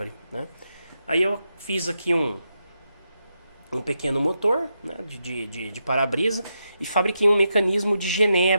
né? Aí eu fiz aqui um pequeno motor, né, de para-brisa, e fabriquei um mecanismo de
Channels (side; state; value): both; inverted; correlation -0.84